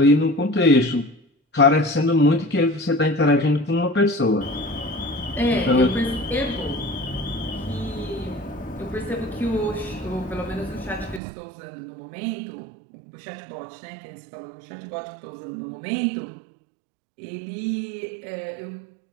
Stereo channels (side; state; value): left; drops out; at 11.2 s